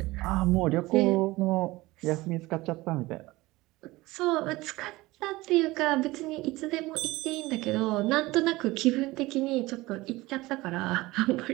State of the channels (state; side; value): quieter; left; 19.9 dB